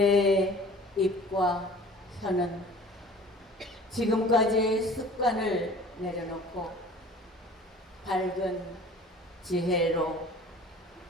입과 혀는 지금까지의 습관을 내려놓고 밝은 지혜로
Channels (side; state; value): both; normal; correlation 0.46